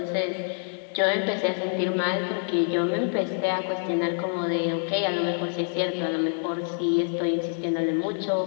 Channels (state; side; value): silent; right; digital silence